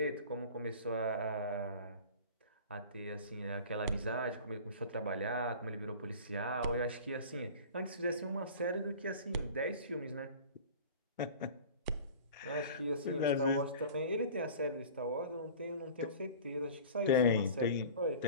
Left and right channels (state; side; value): inverted; both; correlation -0.41